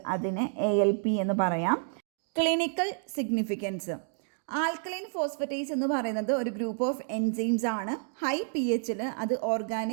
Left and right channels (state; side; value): silent; left; 58 dB below the other